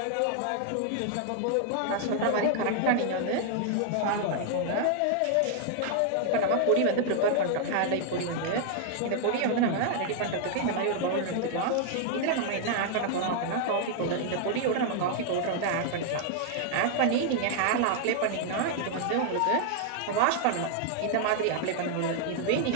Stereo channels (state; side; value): different; both; correlation 0.00